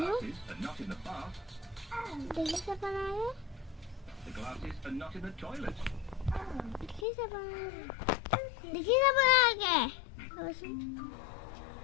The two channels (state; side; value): drops out; right; at 7.1 s